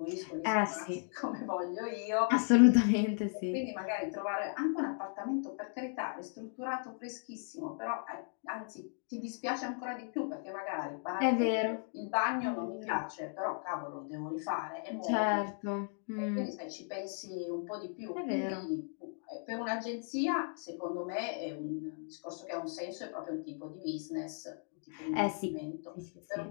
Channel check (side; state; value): right; silent; 54 dB below the other